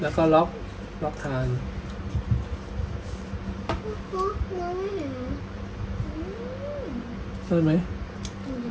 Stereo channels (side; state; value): both; identical; correlation 1.00